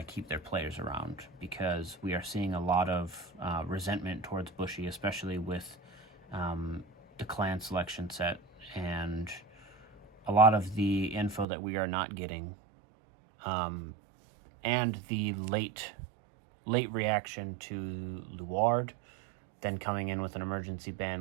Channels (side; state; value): left; drops out; at 11.5 s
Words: to keep their players around, because we are seeing a lot of resentment towards Bushy, especially with the clan selection set and a lot of the info that we are not getting. And the late reaction to Luard, then coming in with an emergency